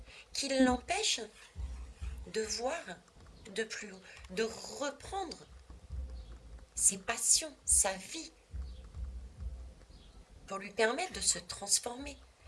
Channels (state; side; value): identical; both; correlation 1.00